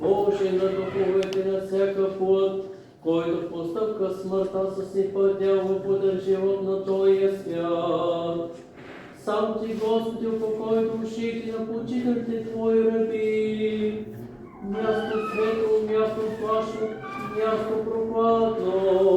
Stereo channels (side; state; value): both; identical; correlation 1.00